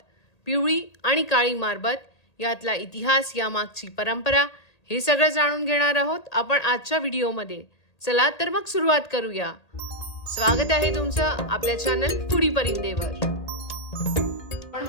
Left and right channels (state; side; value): late; right; 1.8 ms